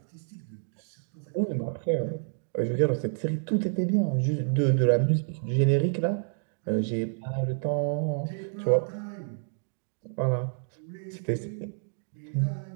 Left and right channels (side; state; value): left; silent; digital silence